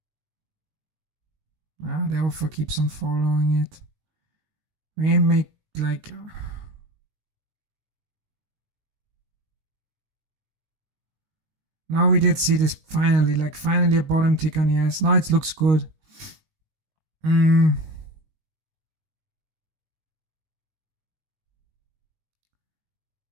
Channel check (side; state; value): left; late; 19 ms